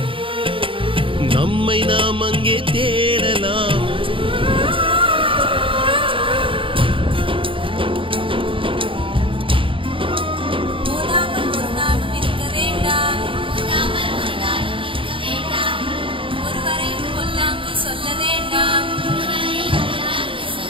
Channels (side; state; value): left; late; 0.25 ms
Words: நம்மை நாம் அங்கே தேடலாம். சொல்ல வேண்டாம்,